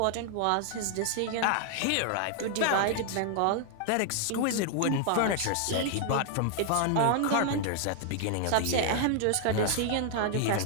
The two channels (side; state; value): both; different; correlation 0.00